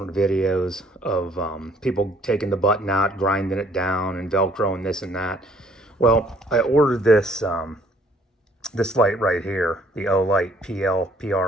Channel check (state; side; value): normal; both; correlation 0.61